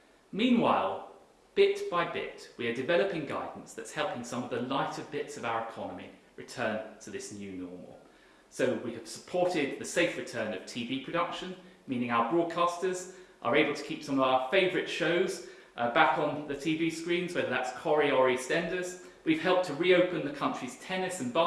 Meanwhile, bit by bit, we are developing guidance that's helping some of the lighter bits of our economy return to this new normal. So we have supported the safe return of TV production, meaning our broadcasters are able to keep some of our favourite shows back on the TV screens, whether that's Corrie or EastEnders. We've helped to reopen the country's tennis and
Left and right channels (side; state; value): both; identical; correlation 1.00